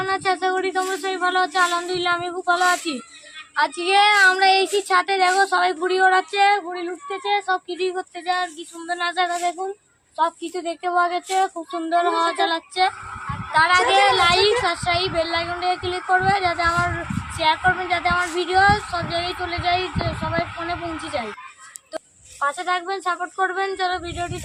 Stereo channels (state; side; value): identical; both; correlation 1.00